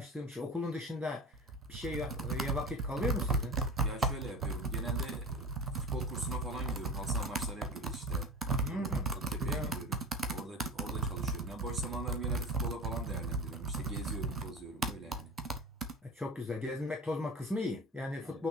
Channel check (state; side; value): normal; both; correlation 0.32